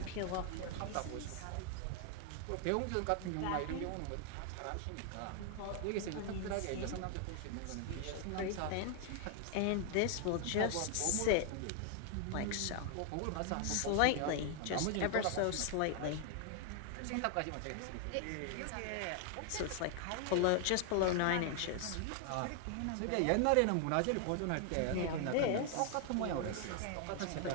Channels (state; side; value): different; both; correlation 0.00